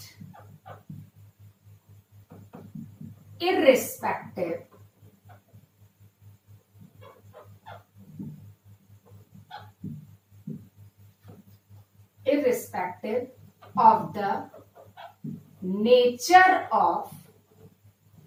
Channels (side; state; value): both; identical; correlation 1.00